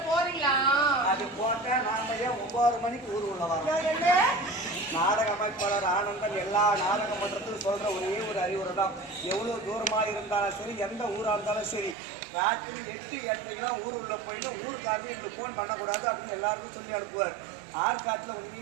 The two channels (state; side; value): drops out; left; at 12.0 s